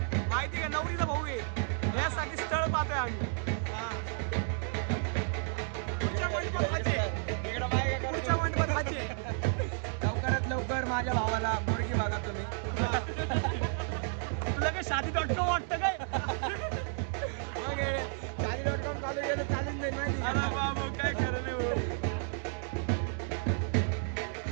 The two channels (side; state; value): left; silent; 56 dB below the other